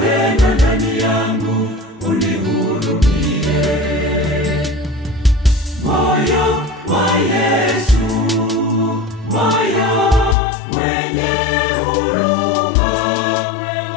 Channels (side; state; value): right; drops out; at 10.4 s